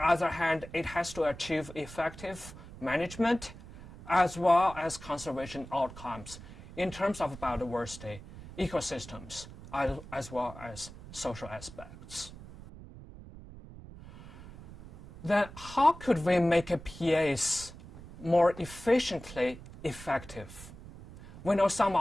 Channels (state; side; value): noise; right; rumble, 16 dB below the sound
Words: hand, it has to achieve effective management as well as conservation outcomes in terms of biodiversity, ecosystems, as well as social aspects. Then how could we make a PAs more efficiently effective? We know some